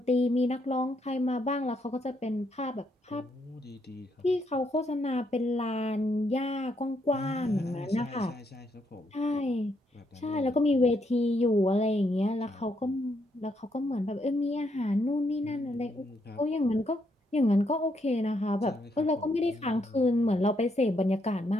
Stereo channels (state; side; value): normal; both; correlation 0.76